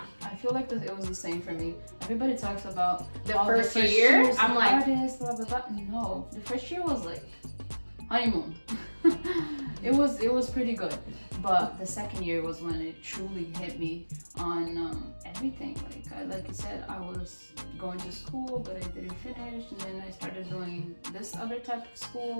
I feel like it was the same for me. Everybody talks about the first year. I'm like, hardest, blah blah blah. No, the first year was like honeymoon. it was pretty good, but the second year was when it truly hit me on everything. Like you said, I was going to school, but I didn't finish, and then I started doing this other type of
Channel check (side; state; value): both; inverted; correlation -1.00